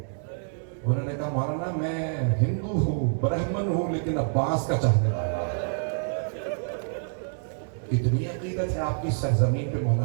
انہوں نے کہا مولانا میں ہندو ہوں, برہمن ہوں, لیکن عباس کا چاہنے والا ہوں. اتنی عقیدت ہے آپ کی سرزمین پہ مولانا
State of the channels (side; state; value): left; silent; digital silence